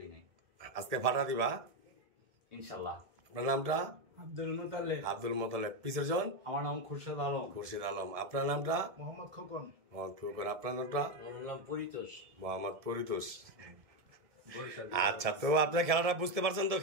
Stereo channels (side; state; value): left; late; 1.7 ms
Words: নাই। আজকে ফাটা দিবা ইনশাল্লাহ। আপনার নামটা? আব্দুল মোতালেব। আব্দুল মোতালেব। পিছের জন? আমার নাম খুরশেদ আলম। খুরশিদ আলম। আপনার নামটা? মোহাম্মদ খোকন। মোহাম্মদ খোকন। আপনার নামটা? আমার নাম পরিতোষ। মোহাম্মদ পরিতোষ। আচ্ছা, তো আপনার খেলাটা বুঝতে পারছেন তো?